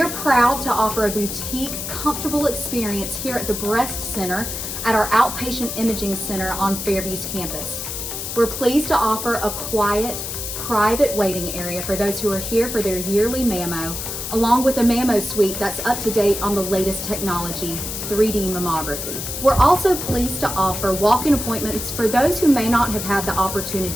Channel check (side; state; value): left; noise; hiss, 6 dB below the sound